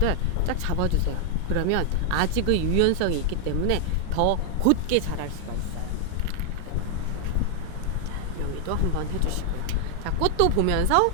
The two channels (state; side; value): different; both; correlation 0.00